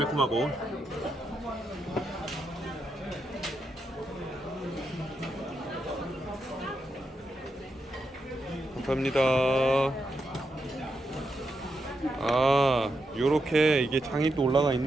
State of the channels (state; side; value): normal; both; correlation 0.84